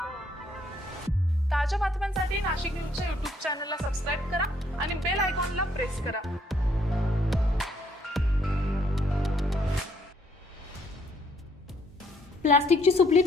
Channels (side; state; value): both; normal; correlation 0.68